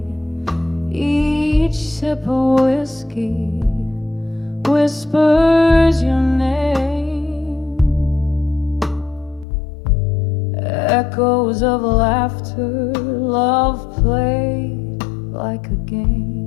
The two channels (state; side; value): drops out; right; at 9.5 s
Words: Each sip of whiskey whispers your name, echoes of laughter, love played like a